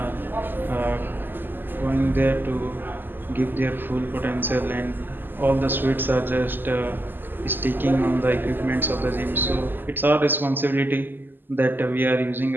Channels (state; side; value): late; left; 0.093 ms